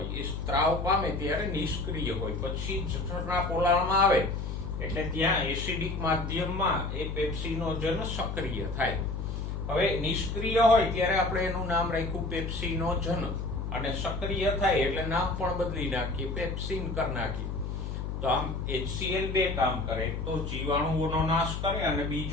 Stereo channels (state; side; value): noise; left; hum, 4 dB below the sound